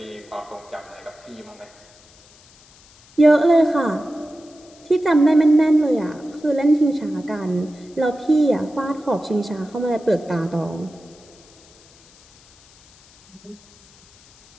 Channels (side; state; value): left; noise; hiss, 27 dB below the sound